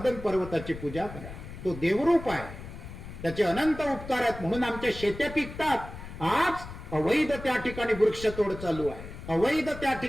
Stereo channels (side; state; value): left; noise; rumble, 12 dB below the sound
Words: पर्वताची पूजा करा. तो देवरूप आहे, त्याचे अनंत उपकार आहेत. म्हणून आमच्या शेत्या पिकतात. आज अवैध त्या ठिकाणी वृक्षतोड चालू आहे, अवैध त्या